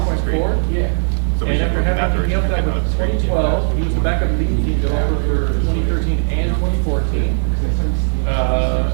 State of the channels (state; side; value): silent; left; 64 dB below the other